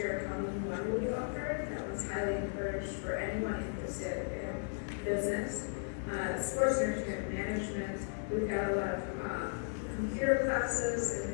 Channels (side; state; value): right; silent; digital silence